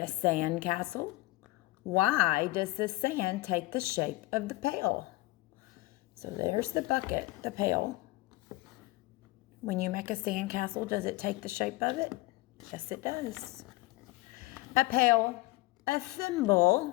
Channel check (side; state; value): right; quieter; 20.3 dB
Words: sand castle? Why does the sand take the shape of the pail? So there's the bucket, the pail. When you make a sand castle, does it take the shape of it? Yes, it does. A pail, a